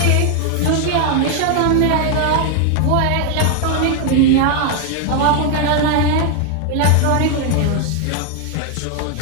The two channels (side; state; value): both; different; correlation 0.00